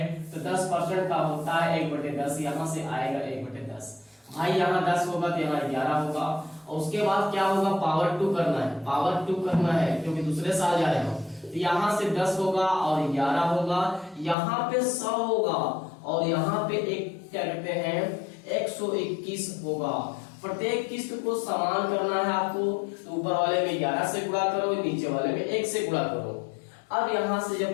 तो 10% का होता है 1/10, यहाँ से आएगा 1/10। भाई यहाँ 10 होगा तो यहाँ 11 होगा, और उसके बाद क्या होगा, पावर 2 करना है, पावर 2 करना है क्योंकि दूसरे साल जा रहे हो। तो यहाँ से 10 होगा और 11 होगा, यहाँ पे 100 होगा, और यहाँ पे एक क्या कहते हैं 121 होगा। प्रत्येक किस्त को समान करना है आपको, तो ऊपर वाले में 11 से गुणा करो, नीचे वाले में 1 से गुणा करो। अब यहाँ से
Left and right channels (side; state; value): right; drops out; at 14.4 s